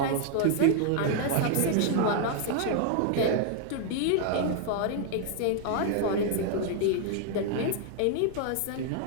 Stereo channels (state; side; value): different; both; correlation 0.00